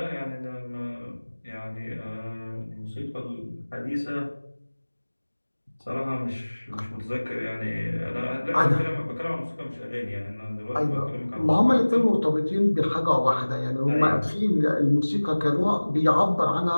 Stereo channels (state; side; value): inverted; both; correlation -1.00